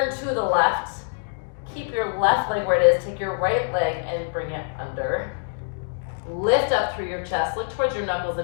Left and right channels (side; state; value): right; silent; digital silence